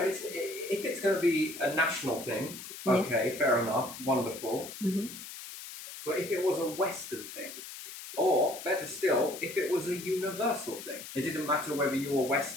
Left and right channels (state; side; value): noise; left; hiss, 12 dB below the sound